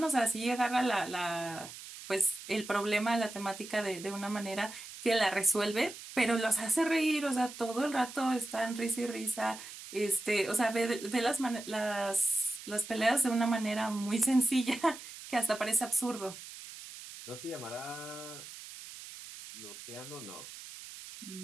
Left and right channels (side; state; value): right; noise; hiss, 13 dB below the sound